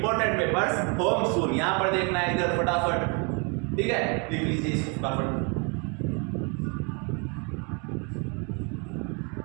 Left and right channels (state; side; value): quieter; left; 33.7 dB